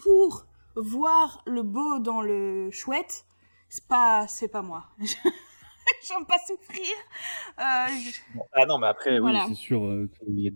voir le beau dans le chouette, c'est pas moi. J'aime pas souffrir. Bon. Ah non, mais après, oui, Voilà. c'est sûr qu'il y a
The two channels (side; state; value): both; inverted; correlation -1.00